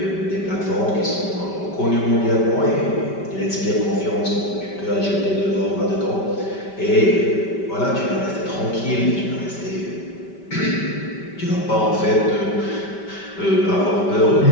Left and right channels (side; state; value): right; late; 5.1 ms